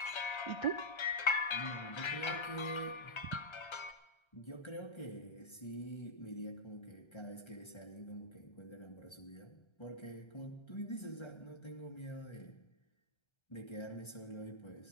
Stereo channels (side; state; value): right; late; 1.3 ms